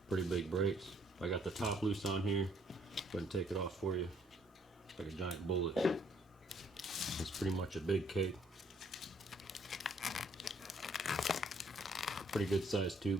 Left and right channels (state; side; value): normal; both; correlation 0.65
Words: Pretty big breaks. I got the top loose on here. Go ahead and take it off for you. It's like a giant bullet. It's pretty much a big cake. Pretty good sized